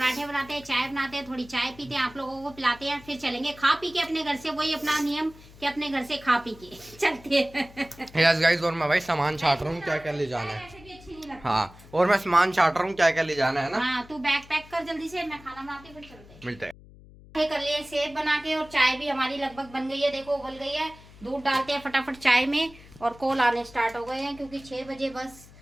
बनाते हैं, चाय बनाते हैं, थोड़ी चाय पीते हैं, आप लोगों को पिलाते हैं, फिर चलेंगे खा पी के अपने घर से। वही अपना नियम कि अपने घर से खा पी के चलते हैं। यस गाइस, और मैं भाई सामान छाट रहा हूँ क्या क्या ले जाना है। हाँ, और मैं सामान छाट रहा हूँ क्या क्या ले जाना है ना। हाँ तू बैग पैक कर जल्दी से, मैं खाना बनाती हूँ, फिर चलते हैं। मिलते हैं। कर लिए सेब बना के और चाय भी हमारी लगभग बन गई है, देखो उबल गई है। दूध डालते हैं फटाफट चाय में और कॉल आने स्टार्ट हो गए हैं, क्योंकि 6 बजे बस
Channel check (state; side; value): noise; left; hum, 21 dB below the sound